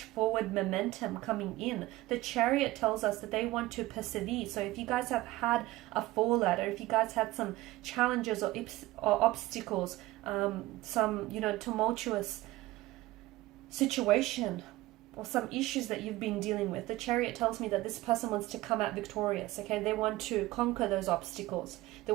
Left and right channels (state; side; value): quieter; left; 18.0 dB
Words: forward momentum coming in. The Chariot tells us that they want to persevere. So if you guys have had a fallout, or if you guys had some challenges or obstacles, some, tumultuous situation, or some issues that you've been dealing with, the Chariot tells me that this person wants to come out victorious. Okay, they want to conquer those obstacles. They